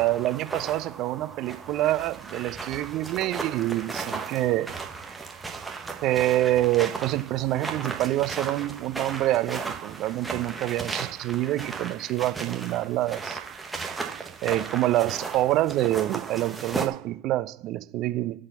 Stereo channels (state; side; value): quieter; left; 12.3 dB